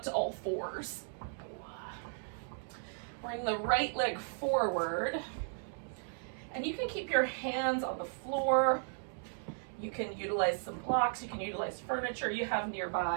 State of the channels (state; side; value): silent; left; digital silence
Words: to all fours. Bring the right leg forward. And you can keep your hands on the floor. You can utilize some blocks. You can utilize furniture you have